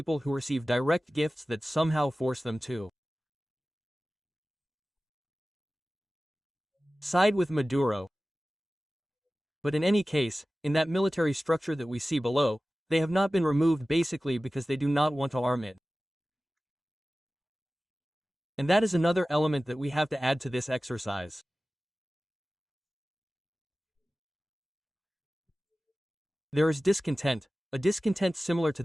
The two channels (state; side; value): normal; both; correlation 0.96